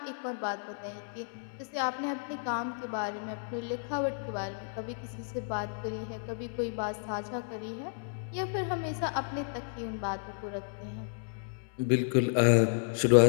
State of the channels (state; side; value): silent; right; 56 dB below the other